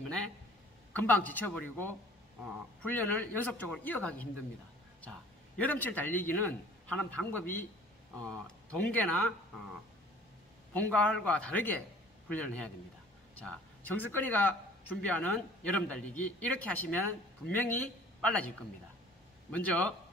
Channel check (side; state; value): both; normal; correlation 0.50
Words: 금방 지쳐버리고 훈련을 연속적으로 이어가기 힘듭니다. 자, 여름철 달리기는 하는 방법이 동계나 봄, 가을과 다르게 훈련을 해야 됩니다. 자, 정석근이가 준비하는 여름 달리기 이렇게 하시면 분명히 빨라질 겁니다. 먼저